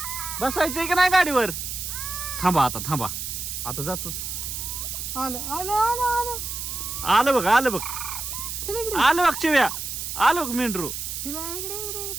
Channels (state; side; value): noise; right; hiss, 5 dB below the sound